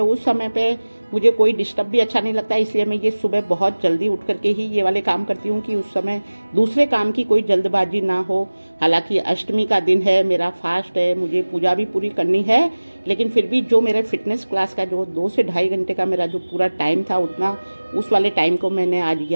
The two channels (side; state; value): both; inverted; correlation -1.00